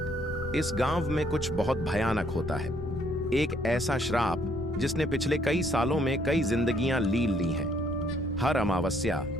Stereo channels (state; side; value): noise; left; rumble, 10 dB below the sound